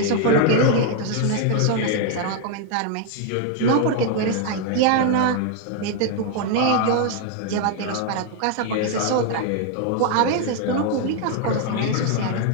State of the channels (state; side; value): different; both; correlation 0.00